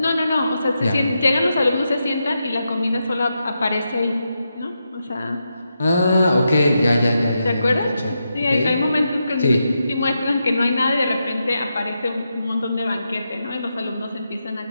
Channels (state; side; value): inverted; both; correlation -0.86